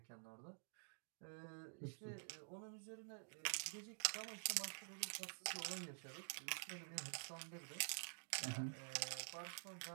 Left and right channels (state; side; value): silent; left; digital silence